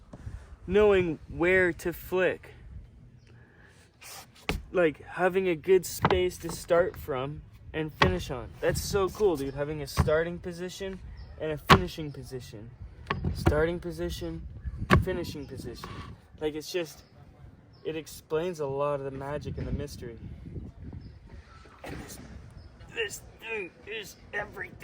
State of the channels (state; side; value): identical; both; correlation 1.00